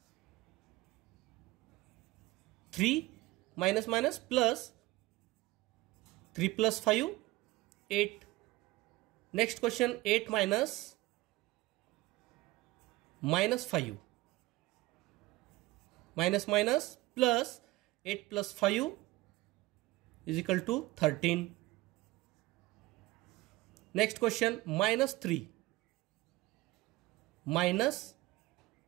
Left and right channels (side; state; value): left; quieter; 19.2 dB